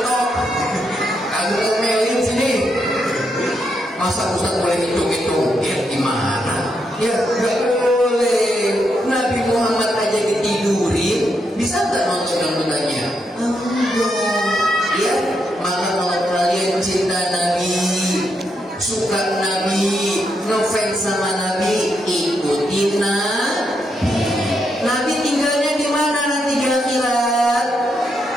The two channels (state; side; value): normal; both; correlation 0.81